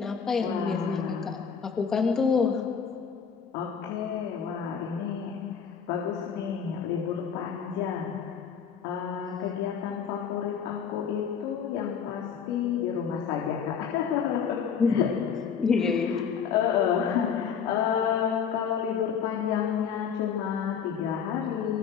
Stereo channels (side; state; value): right; quieter; 7.0 dB